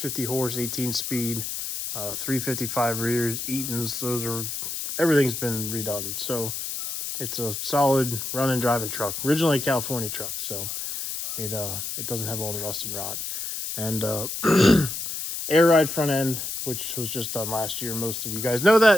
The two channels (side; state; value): left; noise; hiss, 5 dB below the sound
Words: horse, 18 speed, 355 rears, Eaton's. Everything's been redone. So it's a solid running driving truck. Originally a California truck, so it doesn't have all the rust and rot. And air ride front end, which was just done last year. Most of you guys know